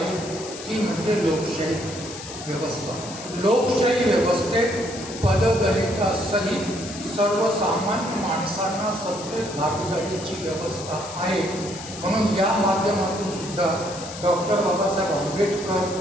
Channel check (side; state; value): left; noise; hiss, 12 dB below the sound